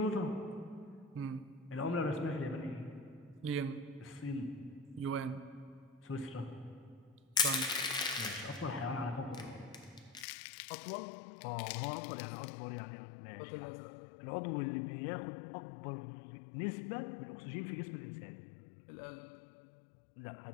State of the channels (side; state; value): right; drops out; at 10.2 s